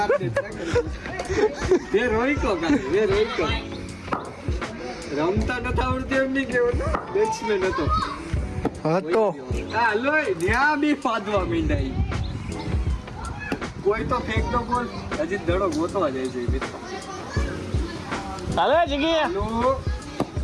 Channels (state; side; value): identical; both; correlation 1.00